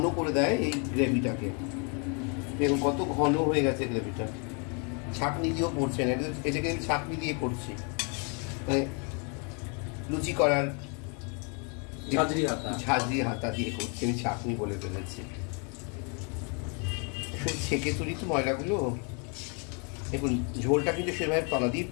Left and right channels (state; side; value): quieter; right; 36.4 dB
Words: করে দেয় এই গ্রেভিটাকে। দেখুন কত ঘন হয়ে গেছে গ্রেভিটা, ছাঁকনি দিয়েও পড়ছে না, এটাকে আমি ছাঁকনি দিয়ে করছি, মানে লুচি করার ঝাঁঝরি হাতা দিয়ে করছি, আমি ছাঁকনি বলে ফেলেছি। ছেঁকে তুলি তো ময়লাগুলো। দেখুন ঝোলটা কিন্তু সেভাবে তলা দিয়ে